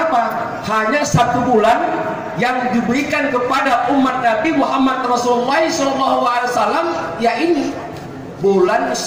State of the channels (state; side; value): identical; both; correlation 1.00